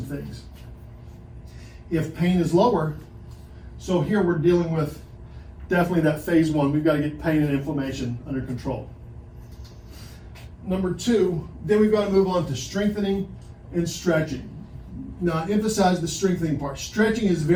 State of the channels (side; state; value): both; identical; correlation 1.00